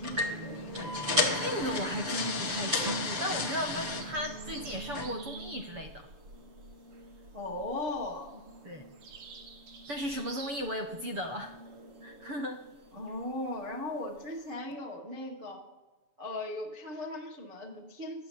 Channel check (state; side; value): late; left; 7.0 ms